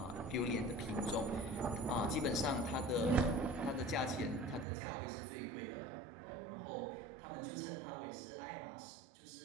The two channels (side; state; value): left; drops out; at 4.7 s